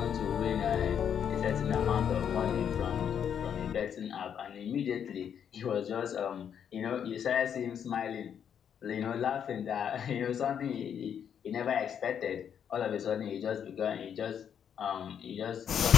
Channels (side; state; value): right; quieter; 8.4 dB